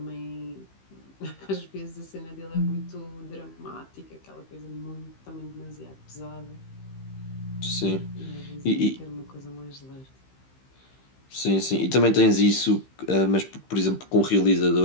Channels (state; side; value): late; right; 15 ms